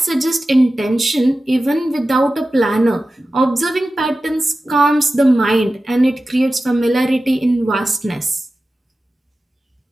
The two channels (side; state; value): both; normal; correlation 0.94